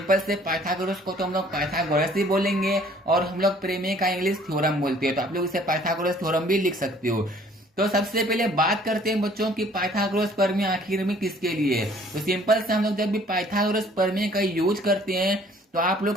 से पाइथागोरस को तो हम लोग पाइथागोरस ही बोलेंगे और हम लोग प्रमेय का इंग्लिश थ्योरम बोलते हैं, तो आप लोग इसे पाइथागोरस थ्योरम भी लिख सकते हो। तो सबसे पहले बात करते हैं बच्चों की पाइथागोरस प्रमेय आखिर में किसके लिए है। तो सिंपल से हम लोग जब भी पाइथागोरस प्रमेय का यूज करते हैं तो आप लोग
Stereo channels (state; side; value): normal; both; correlation 0.57